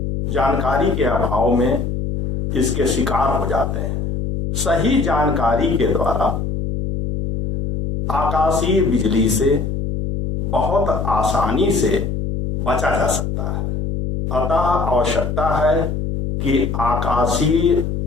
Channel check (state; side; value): noise; left; hum, 2 dB below the sound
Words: जानकारी के अभाव में इसके शिकार हो जाते हैं। सही जानकारी के द्वारा आकाशीय बिजली से बहुत आसानी से बचा जा सकता है। अतः आवश्यकता है कि आकाशीय